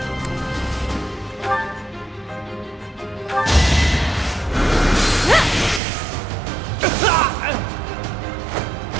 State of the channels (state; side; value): drops out; left; at 5.8 s